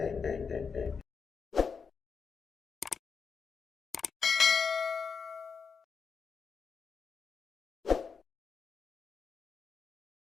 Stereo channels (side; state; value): right; quieter; 5.7 dB